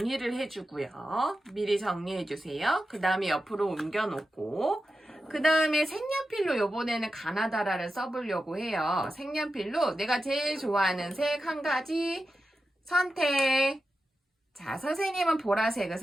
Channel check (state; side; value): normal; both; correlation 0.91